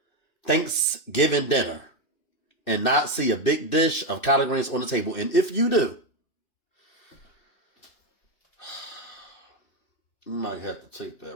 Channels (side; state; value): right; late; 2.6 ms